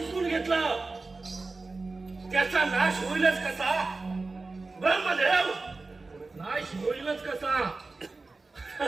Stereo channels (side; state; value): left; quieter; 3.6 dB